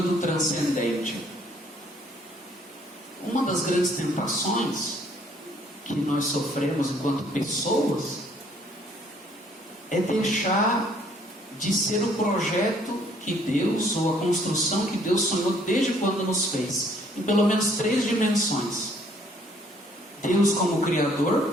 transcendente. Uma das grandes tentações que nós sofremos enquanto pessoas é deixar de ser o projeto que Deus, ou a construção que Deus sonhou desde quando nos fez, em pelo menos 3 dimensões. Deus como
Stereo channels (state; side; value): normal; both; correlation 0.63